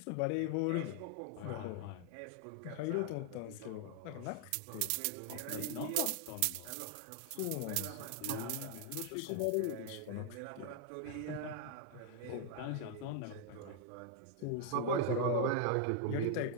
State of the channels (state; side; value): different; both; correlation 0.00